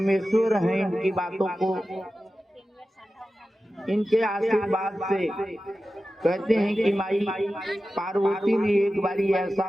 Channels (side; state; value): both; normal; correlation 0.94